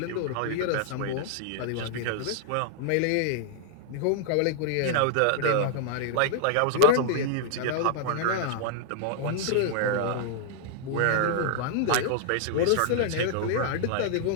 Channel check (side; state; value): both; different; correlation -0.01